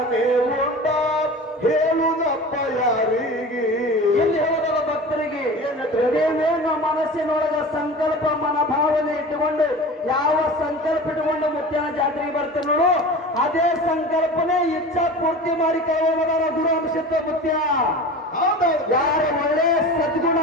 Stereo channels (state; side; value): normal; both; correlation 0.35